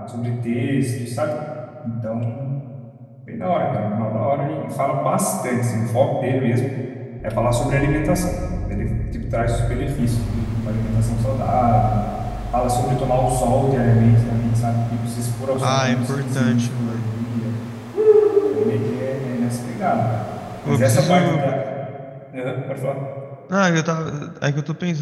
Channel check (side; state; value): both; identical; correlation 1.00